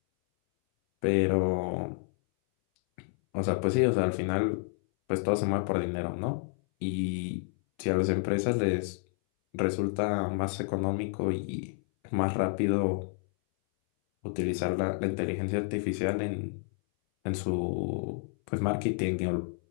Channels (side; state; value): right; silent; 58 dB below the other